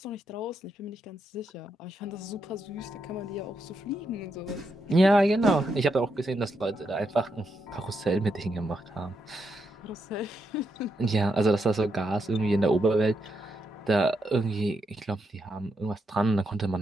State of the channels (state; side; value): normal; both; correlation 0.82